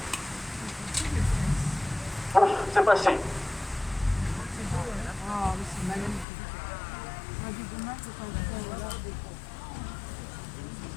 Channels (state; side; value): drops out; right; at 6.2 s